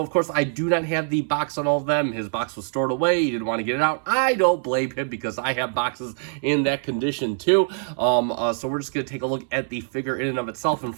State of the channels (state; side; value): silent; left; 60 dB below the other